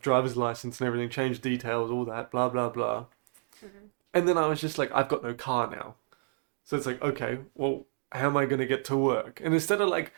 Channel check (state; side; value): silent; left; digital silence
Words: driver's license and everything, changed details, all that, blah, blah, blah. And then I was just like, I've got no car now. So it's like, okay, well, how am I going to get to work? And instead of like